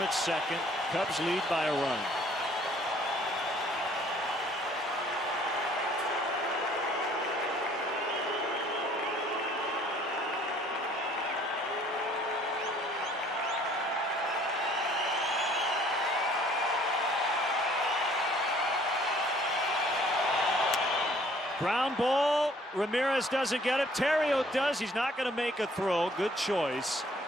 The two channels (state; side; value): normal; both; correlation 0.58